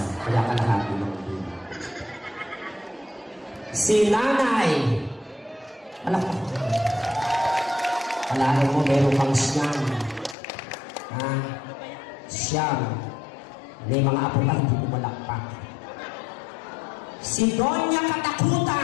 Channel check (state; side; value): drops out; right; at 10.4 s